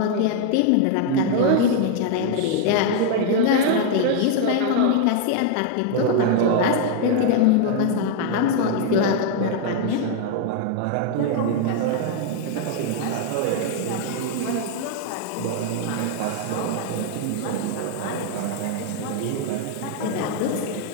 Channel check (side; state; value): both; different; correlation 0.00